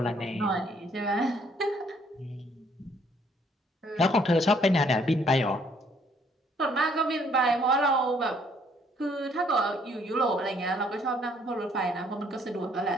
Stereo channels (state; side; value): normal; both; correlation 0.65